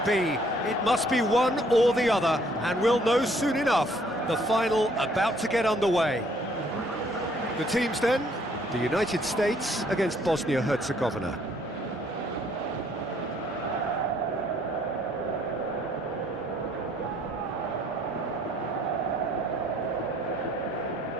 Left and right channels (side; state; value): both; normal; correlation 0.63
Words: be? It must be one or the other, and we'll know soon enough. The final about to get underway. The teams then, the United States against Bosnia-Herzegovina.